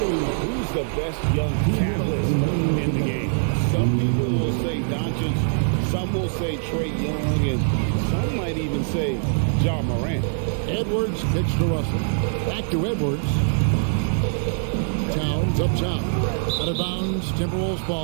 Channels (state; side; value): silent; left; digital silence